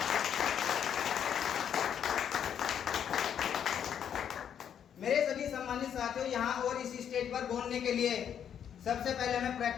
मेरे सभी सम्मानित साथियों, यहाँ और इस स्टेज पर बोलने के लिए सबसे पहले हमें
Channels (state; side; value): quieter; right; 8.8 dB